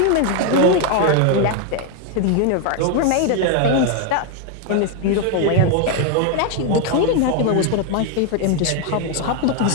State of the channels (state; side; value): different; both; correlation 0.01